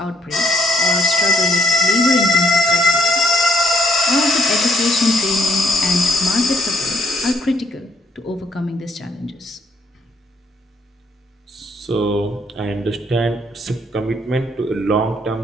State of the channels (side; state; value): both; normal; correlation 0.68